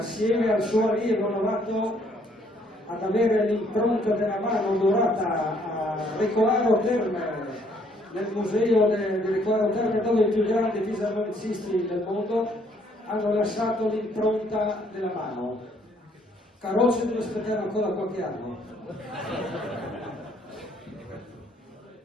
al suo allievo novato, ad avere l'impronta della mano dorata a Recolaro Terme, nel museo di Recolaro Terme, dove i più grandi fisarmonicisti del mondo hanno lasciato l'impronta della mano. Carrozze deve aspettare ancora qualche anno.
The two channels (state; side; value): normal; both; correlation 0.66